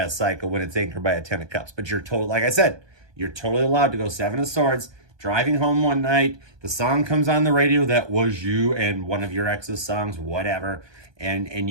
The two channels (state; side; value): late; left; 1.2 ms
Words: cycle when it's anchored by a 10 of Cups. But like I said, you're totally allowed to go 7 of Swords, driving home one night, the song comes on the radio that was you and one of your ex's songs, whatever, and